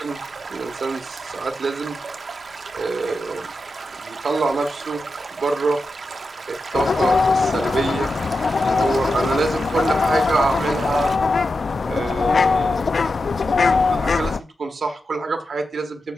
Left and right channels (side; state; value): both; normal; correlation 0.89